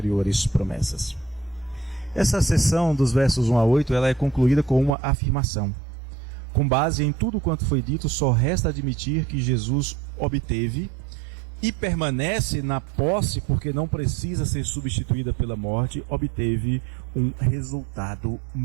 promessas. Essa seção dos versos 1 a 8, ela é concluída com uma afirmação. Com base em tudo quanto foi dito, só resta admitir que Jesus obteve e permanece na posse, porque não precisa ser substituída pela morte, obteve um resultado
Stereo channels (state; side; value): drops out; left; at 4.9 s